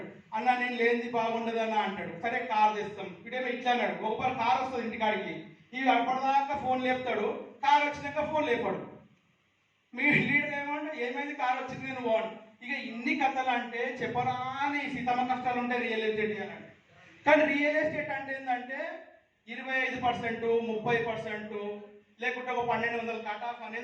అన్న నేను లేనిది బాగుండదు అన్న అంటాడు. సరే కార్ తెస్తాం, ఇప్పుడేమో ఇట్లా అన్నాడు. ఒకసారి కార్ వస్తుంది ఇంటికాడికి, ఇవి అప్పటిదాకా ఫోన్ లేపుతాడు, కార్ వచ్చినాక ఫోన్ లేపాడు. మీ లీడర్ ఏమంటే ఏమైంది, కార్ వచ్చింది నేను పోను. ఇక ఇన్ని కథలు అంటే చెప్పరాని సీతమ్మ కష్టాలు ఉంటాయి రియల్ ఎస్టేట్ అని. కానీ రియల్ ఎస్టేట్ అంటే ఏంటంటే 25%, 30%, లేకుంటే ఒక 1200 కట్ ఆఫ్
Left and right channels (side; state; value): both; identical; correlation 1.00